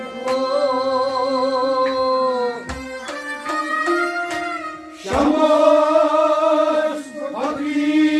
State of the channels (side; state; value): both; identical; correlation 1.00